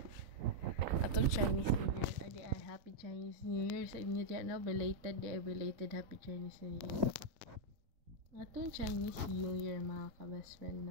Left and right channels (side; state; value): left; late; 3.8 ms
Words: atong Chinese New Year. Adi ay happy Chinese New Year sa inyo diyan, no? Belated happy Chinese New Year. Atong Chinese New Year mga ka-best friend,